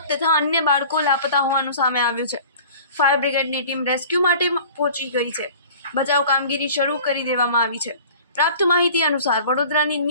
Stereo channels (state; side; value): inverted; both; correlation -0.45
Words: તથા અન્ય બાળકો લાપતા હોવાનું સામે આવ્યું છે। ફાયર બ્રિગેડની ટીમ રેસ્ક્યુ માટે પહોંચી ગઈ છે। બચાવ કામગીરી શરૂ કરી દેવામાં આવી છે। પ્રાપ્ત માહિતી અનુસાર વડોદરાની